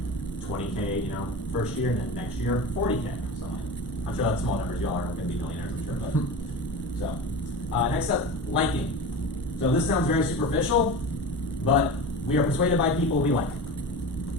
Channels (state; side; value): normal; both; correlation 0.30